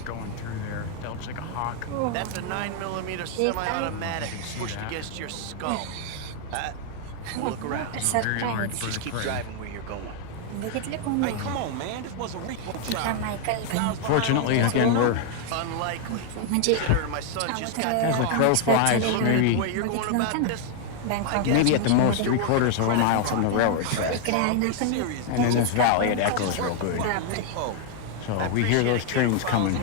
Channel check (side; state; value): both; different; correlation 0.00